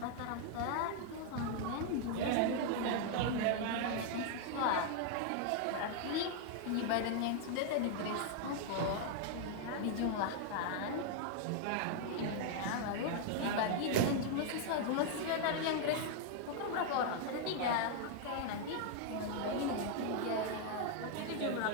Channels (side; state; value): both; different; correlation 0.00